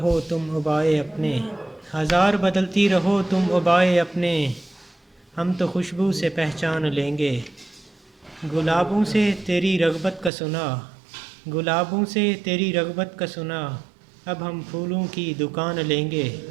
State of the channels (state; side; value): drops out; left; at 10.3 s